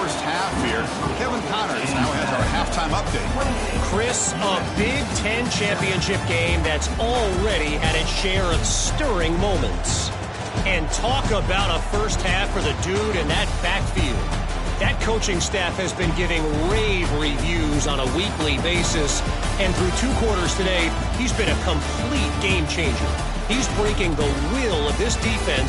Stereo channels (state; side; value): identical; both; correlation 1.00